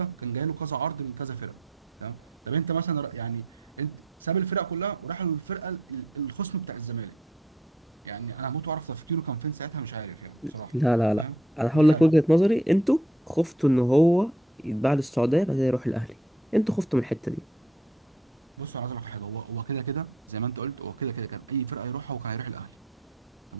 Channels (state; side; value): normal; both; correlation 0.64